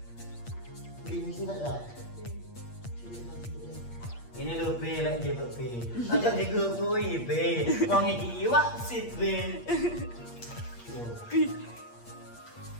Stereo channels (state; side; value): late; right; 8.5 ms